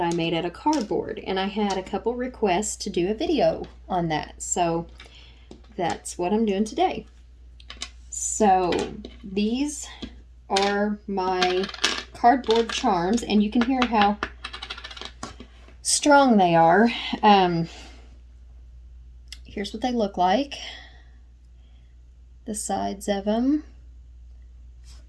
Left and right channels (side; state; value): both; identical; correlation 1.00